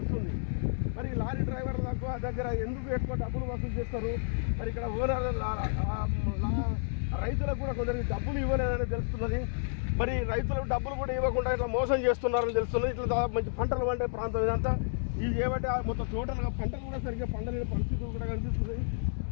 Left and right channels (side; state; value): right; silent; digital silence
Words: మరి లారీ డ్రైవర్ల దగ్గర ఎందుకు ఎక్కువ డబ్బులు వసూలు చేస్తారు? మరి ఇక్కడ ఓనర్ రైతులకు కూడా కొందరికి డబ్బులు ఇవ్వలేదని తెలుస్తున్నది. మరి రైతులకు డబ్బులు కూడా ఇవ్వకుండా ఇట్లా మోసం చేస్తున్నారని తెలుస్తున్నది. ఇట్లా మంచి పంటలు పండే ప్రాంతం ఇదంతా. ఇది ఏమంటే మొత్తం టోటల్గా పంటలు కూడా సరిగ్గా పండలేని పరిస్థితులు కూడా కనిపిస్తుంది.